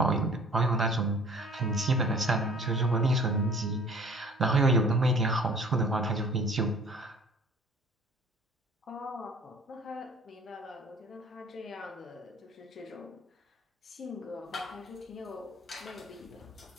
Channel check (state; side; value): normal; both; correlation 0.50